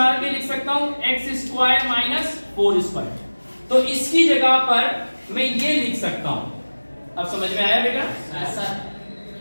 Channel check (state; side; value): inverted; both; correlation -1.00